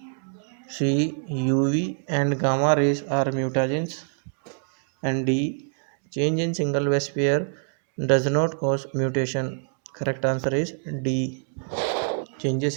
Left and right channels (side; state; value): left; silent; digital silence